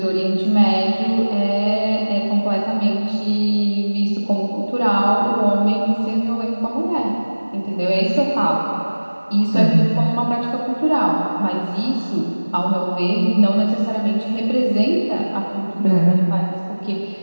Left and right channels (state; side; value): inverted; both; correlation -1.00